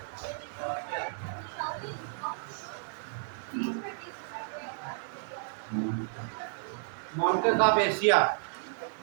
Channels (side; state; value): left; silent; digital silence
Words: माउंटेन ऑफ एशिया